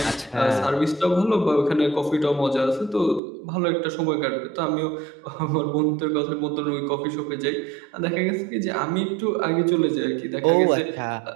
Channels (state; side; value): drops out; left; at 3.2 s